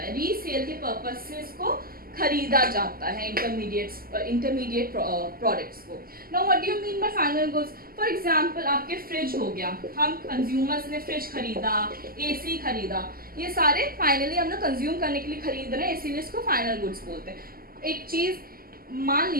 रीसेल के पर्पस से इसको खरीदा जाता है इंटरमीडिएट प्रोडक्ट्स को। Now what do you mean by final goods. For example आपके फ्रिज हो गया, हम कंज्यूमर्स ने फ्रिज खरीदा, एसी खरीदा, ये सारे फाइनली हम लोग कंज्यूम करने के लिए खरीद रहे हैं, इसीलिए इसको फाइनल गुड्स बोलते हैं। एक चीज मान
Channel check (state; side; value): late; left; 0.42 ms